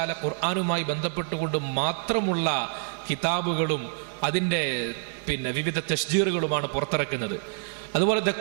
ഖുർആനുമായി ബന്ധപ്പെട്ടുകൊണ്ട് മാത്രമുള്ള കിതാബുകളും അതിന്റെ വിവിധ തശ്ജീറുകളുമാണ് പുറത്തിറക്കുന്നത്. അതുപോലെ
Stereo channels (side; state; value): left; silent; 60 dB below the other